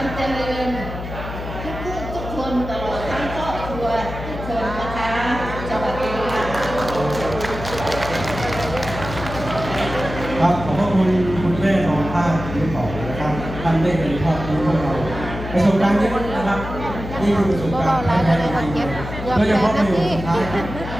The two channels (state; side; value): noise; left; hum, 8 dB below the sound